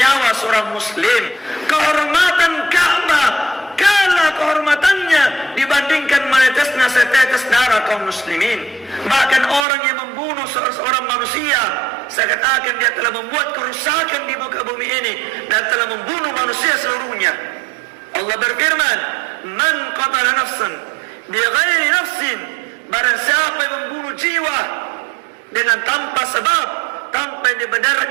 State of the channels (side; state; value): left; drops out; at 9.7 s